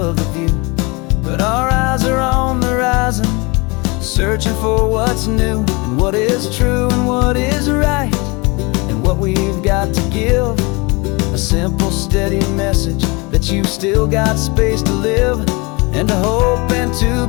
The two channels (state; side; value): quieter; right; 27.2 dB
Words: the view, but our eyes are on the horizon, searching for what's new, and what is true and what is right, and what we've got to give. A simple, steady message that you've still got space to live, and to hope and to